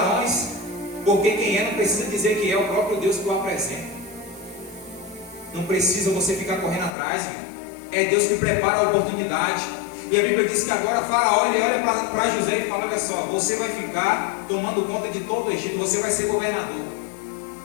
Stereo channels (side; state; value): right; drops out; at 7.0 s